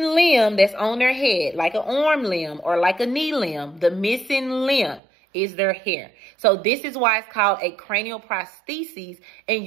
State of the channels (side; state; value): left; drops out; at 5.0 s